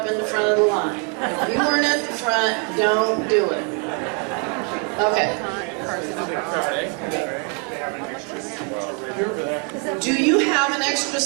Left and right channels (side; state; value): left; quieter; 35.2 dB